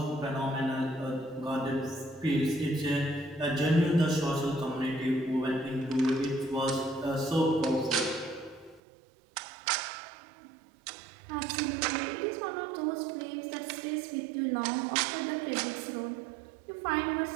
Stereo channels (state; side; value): drops out; left; at 8.8 s